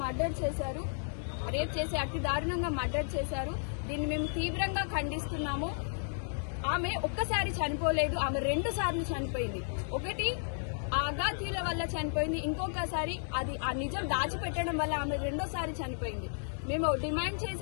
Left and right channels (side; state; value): right; silent; digital silence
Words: మర్డర్ చేశారు. దీన్ని మేము తీవ్రంగా ఖండిస్తున్నాము. ఆమె ఒక్కసారి చనిపోలేదు, ఆమె 2 సార్లు చనిపోయింది. ఒకటి ఆ అగాధ్యుల వల్ల చనిపోయింది, ఇంకొకసారి అది ఆ నిజం దాచిపెట్టడం వల్ల ఆమె 2వ సారి చనిపోయింది. మేము డిమాండ్